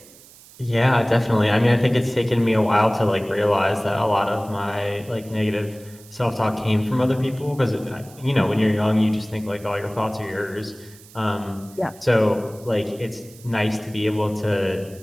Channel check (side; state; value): right; noise; hiss, 23 dB below the sound